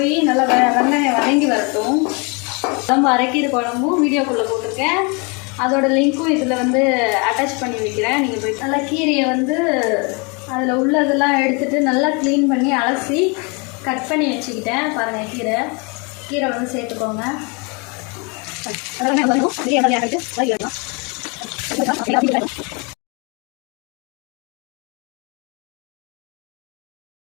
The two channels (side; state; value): right; quieter; 31.5 dB